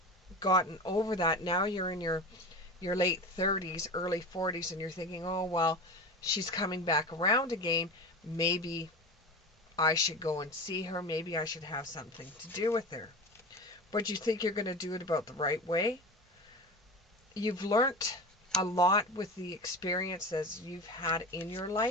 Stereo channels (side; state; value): both; normal; correlation 0.28